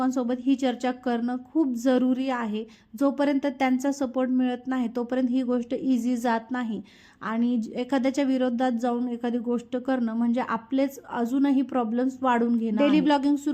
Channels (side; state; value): both; identical; correlation 1.00